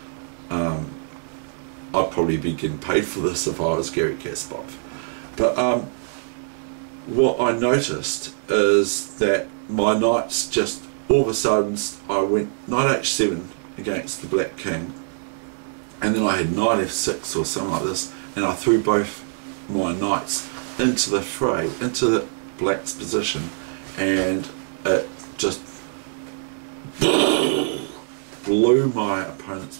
I'd probably be getting paid for this if I was Gary Kasparov. But what I noticed is that my knights just, all of a sudden, I went knight h7 against the black king, and then I had knight f6 or something like this, and I threw both my knights into the fray, into the black's position, and it just blew my opponent's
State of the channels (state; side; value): silent; left; digital silence